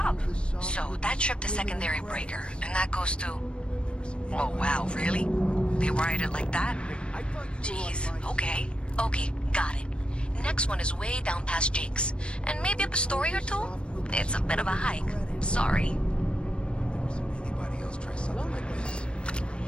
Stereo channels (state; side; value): late; right; 0.057 ms